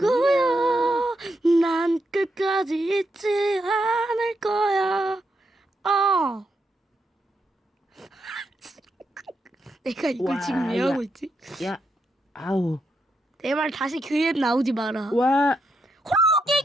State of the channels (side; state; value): both; normal; correlation 0.82